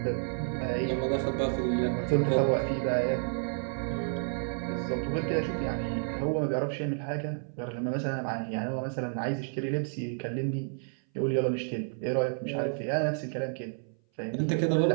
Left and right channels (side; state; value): left; silent; 58 dB below the other